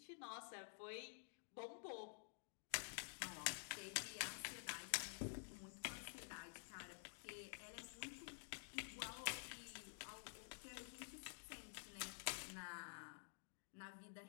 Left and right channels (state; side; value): silent; right; digital silence